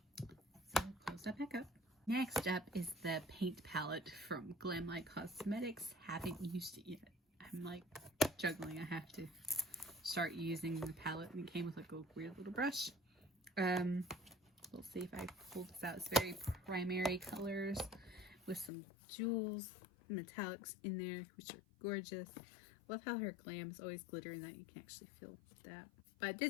close that back up. Next up is the paint palette from Glam Light Cosmetics. Haven't used it yet. I I'm like juggling. I have to start using the palette, and it came with like a weird little brush. We'll see if I pull this out. It's very primary colors with some jewels, metallics in there, which are gorgeous. Love how her glam is always glittering, that you can actually feel that. But I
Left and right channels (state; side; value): drops out; right; at 18.7 s